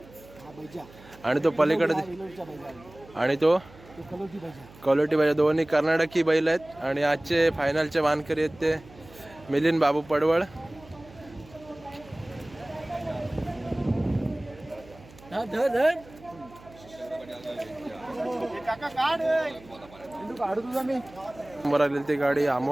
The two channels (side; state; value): right; noise; hum, 22 dB below the sound